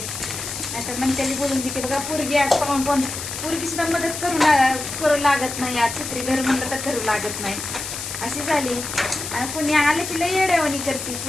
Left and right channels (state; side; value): noise; left; hiss, 7 dB below the sound